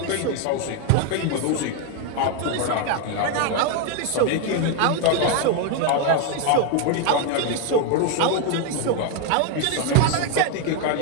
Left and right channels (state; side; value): different; both; correlation 0.01